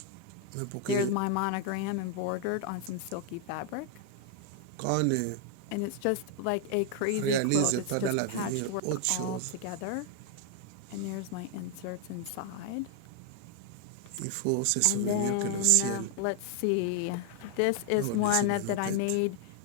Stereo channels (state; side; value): different; both; correlation 0.00